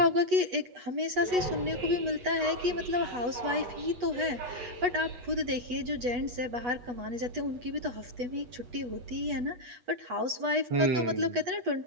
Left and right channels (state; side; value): late; left; 8.2 ms